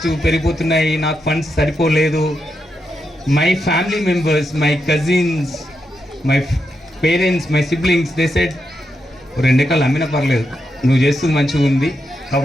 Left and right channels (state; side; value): normal; both; correlation 0.84